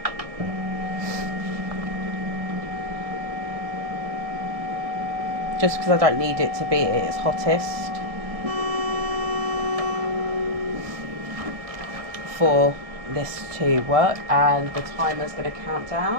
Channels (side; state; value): left; late; 1.7 ms